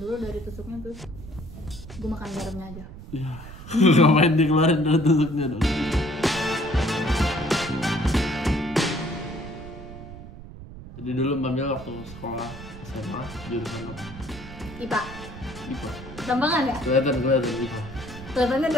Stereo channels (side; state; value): right; noise; rumble, 14 dB below the sound